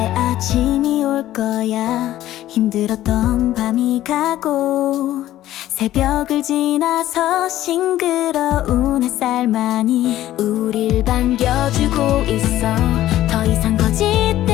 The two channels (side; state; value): right; quieter; 13.9 dB